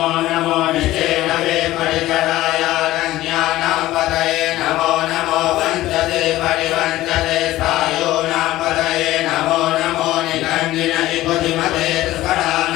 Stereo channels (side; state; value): right; quieter; 15.9 dB